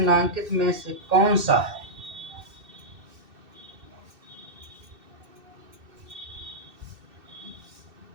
में से कौन सा है?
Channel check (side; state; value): left; late; 2.6 ms